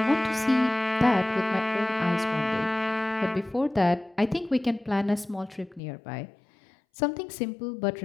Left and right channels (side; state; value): right; drops out; at 5.8 s